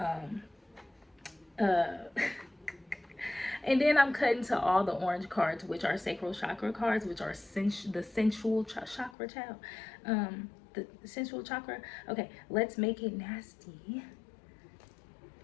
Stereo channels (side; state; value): right; drops out; at 9.2 s